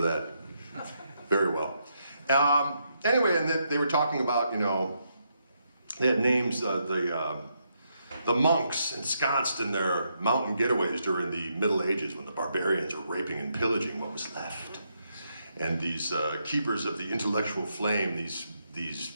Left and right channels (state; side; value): inverted; both; correlation -0.79